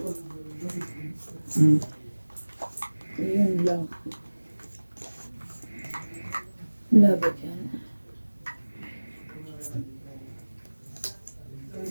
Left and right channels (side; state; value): both; inverted; correlation -1.00